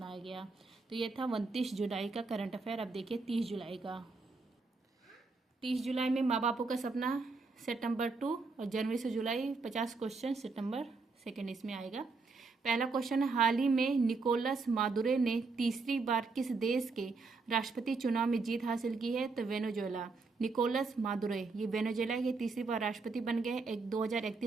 गया। तो ये था 29 जुलाई का करंट अफेयर। अब देखिए 30 जुलाई का। 30 जुलाई में माँ बापों का सपना सेट नंबर 2 और जनवरी से जुलाई 50 क्वेश्चन सेट नंबर 2 इसमें आएगा। पहला क्वेश्चन है, हाल ही में निकोलस मादुरो ने तीसरी बार किस देश के राष्ट्रपति चुनाव में जीत हासिल की है? तो वेनेजुएला। निकोलस मादुरो ये वेनेजुएला के तीसरी बार राष्ट्रपति बन गए।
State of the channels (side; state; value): left; quieter; 4.1 dB